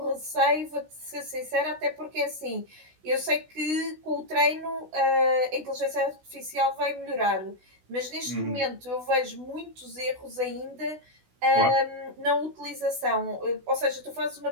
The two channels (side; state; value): left; late; 16 ms